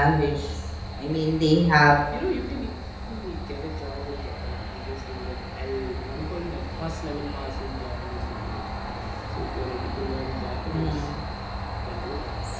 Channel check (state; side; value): identical; both; correlation 1.00